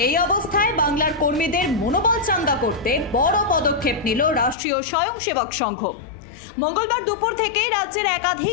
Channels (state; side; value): drops out; right; at 4.5 s